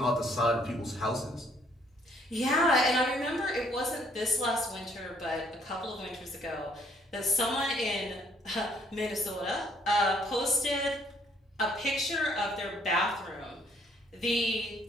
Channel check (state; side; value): normal; both; correlation 0.65